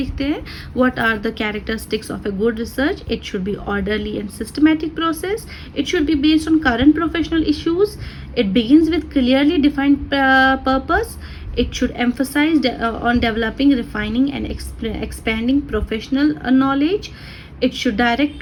हैं. What are the characteristics of a good research. It should be orderly and systematic process. It should be based on current professional issues. It begins with clearly defined purpose. It should emphasize on developing, refining and expanding professional knowledge. It should direct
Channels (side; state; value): both; identical; correlation 1.00